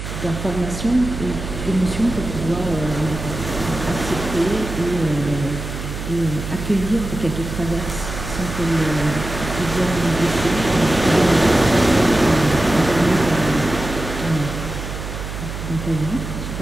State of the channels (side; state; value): right; noise; hum, 7 dB below the sound